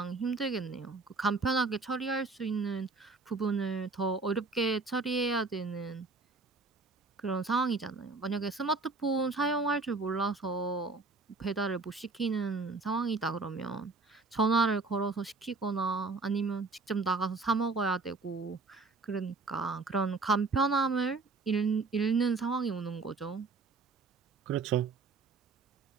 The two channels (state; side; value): quieter; left; 3.9 dB